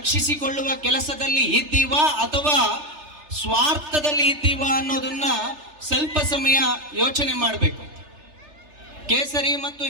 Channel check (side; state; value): left; late; 3.3 ms